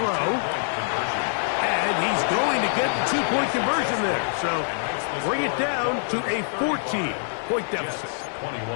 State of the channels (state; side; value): silent; right; 62 dB below the other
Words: And he's going to get the 2-point conversion there. So bring it down to a 14-point deficit.